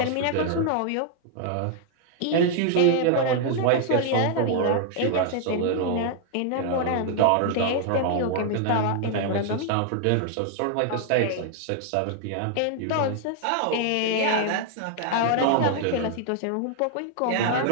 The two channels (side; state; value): both; different; correlation -0.01